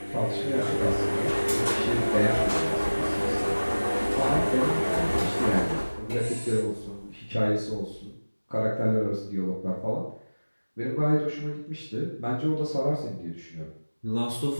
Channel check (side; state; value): both; inverted; correlation -1.00